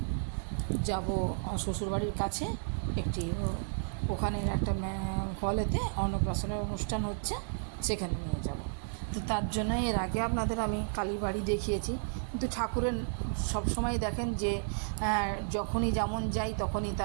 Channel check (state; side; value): silent; left; digital silence